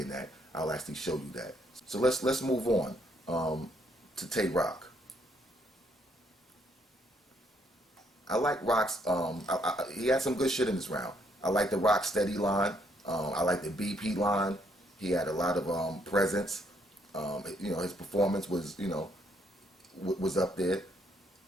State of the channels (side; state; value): both; normal; correlation 0.71